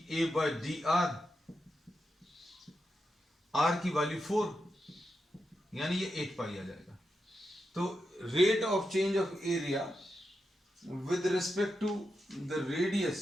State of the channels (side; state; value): both; normal; correlation 0.87